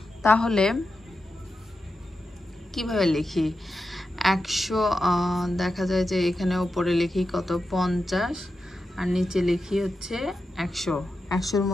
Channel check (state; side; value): normal; both; correlation 0.89